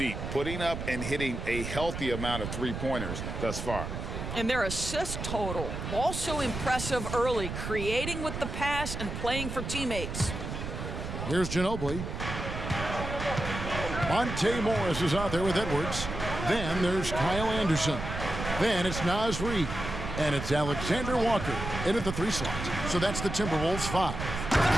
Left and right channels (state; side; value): noise; right; rumble, 6 dB below the sound